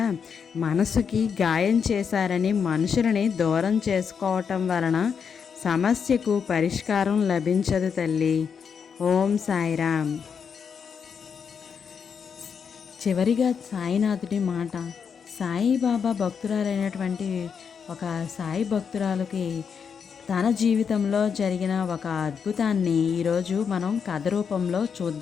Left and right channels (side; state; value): right; quieter; 6.6 dB